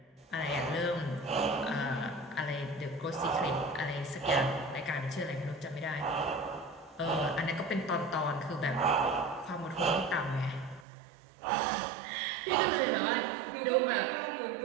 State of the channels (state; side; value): drops out; left; at 10.9 s